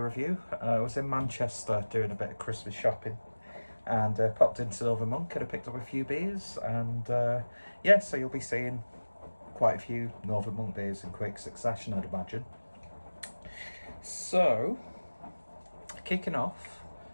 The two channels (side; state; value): both; inverted; correlation -1.00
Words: review. I was in Manchester doing a bit of Christmas shopping and popped into Northern Monk and I picked up a few beers and yeah, so you'll be seeing quite a few Northern Monk beers in quick succession, I'd imagine. So, kicking off